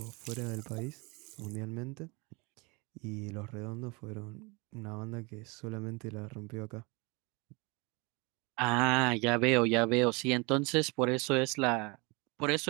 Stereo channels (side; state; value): left; quieter; 28.0 dB